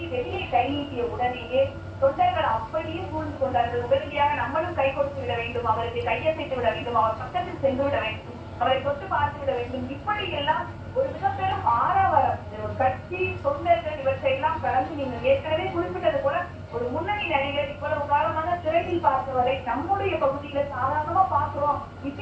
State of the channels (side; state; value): both; identical; correlation 1.00